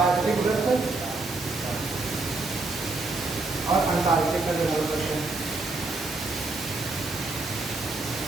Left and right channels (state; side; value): quieter; left; 3.3 dB